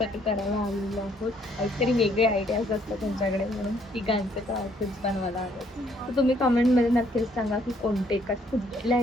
करायला आलेलो आहोत काहीतरी वेगळे आयडियाज असतात त्यांच्याकडे म्हणून तिघांचे तर आउटफिट्स बनवायला हवेत तर तुम्ही कमेंटमध्ये नक्कीच सांगा की कोणते कुठल्या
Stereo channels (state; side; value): normal; both; correlation 0.66